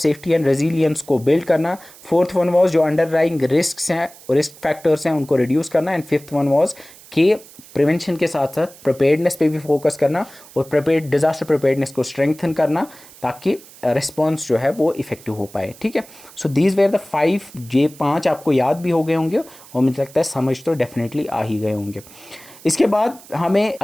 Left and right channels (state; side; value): noise; right; hiss, 21 dB below the sound